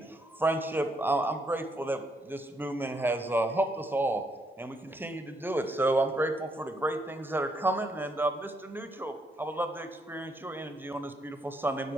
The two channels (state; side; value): normal; both; correlation 0.74